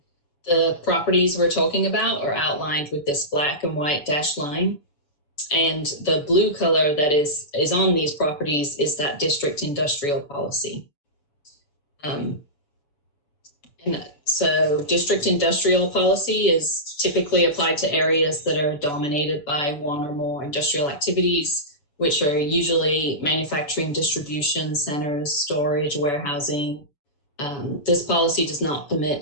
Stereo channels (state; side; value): late; right; 7.0 ms